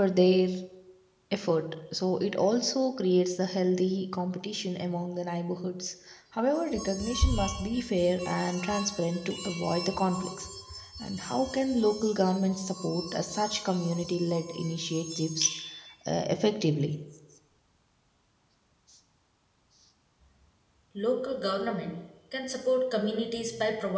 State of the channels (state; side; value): identical; both; correlation 1.00